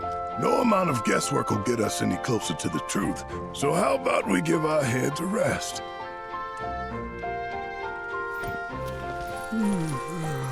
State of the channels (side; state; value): both; identical; correlation 1.00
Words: No amount of guesswork will get us any closer to the truth. So how about we give our heads a rest?